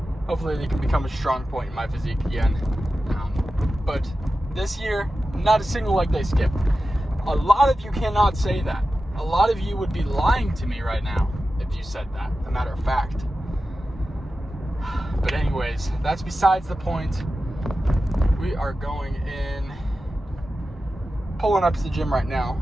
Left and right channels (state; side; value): normal; both; correlation 0.93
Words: they can become a strong point in my physique again. But this year, not a single leg day skip. A lot of you cannot say that. A lot of you would be lying to me right now if you said that, a matter of fact. But anyways, that's besides the point. We are going in, pulling up to the gym right now.